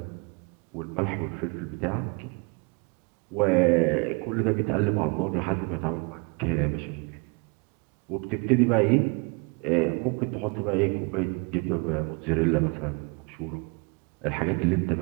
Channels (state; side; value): quieter; left; 31.4 dB